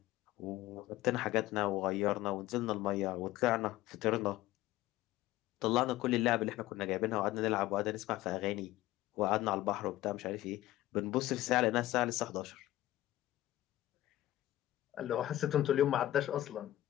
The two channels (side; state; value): right; quieter; 15.3 dB